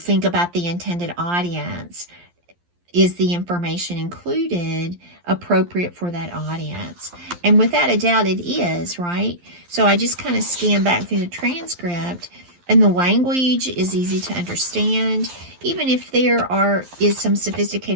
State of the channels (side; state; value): left; late; 11 ms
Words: about the intended audience, is the information included appropriate for that audience? And without a doubt, it is, right? So I just kind of scan back through the transcript, and the language is easy to understand. Even if there is some